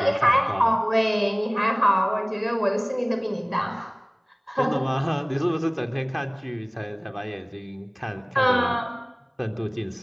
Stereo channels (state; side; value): identical; both; correlation 1.00